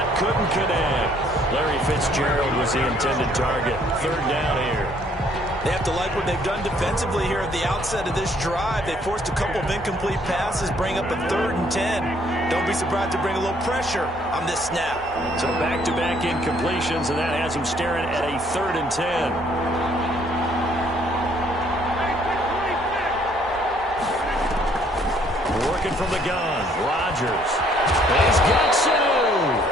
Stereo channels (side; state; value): both; normal; correlation 0.64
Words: couldn't connect. Larry Fitzgerald was the intended target. 3rd down here. They have to like what they've done defensively here at the outset of this drive. They forced a couple of incomplete passes, bring up a 3rd and 10. Don't be surprised to bring a little pressure on this snap. So back-to-back incompletions, and that has him staring at a 3rd and 10. Working from the gun, Rodgers. He's got Sanu.